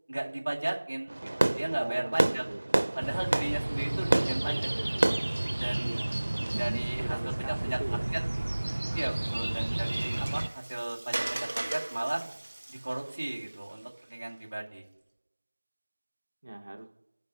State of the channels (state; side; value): inverted; both; correlation -1.00